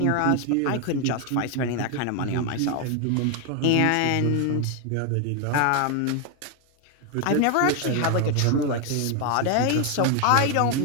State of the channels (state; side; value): different; both; correlation 0.01